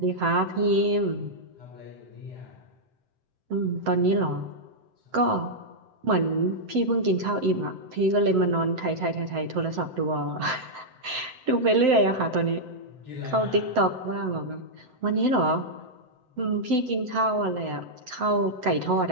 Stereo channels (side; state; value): left; late; 7.8 ms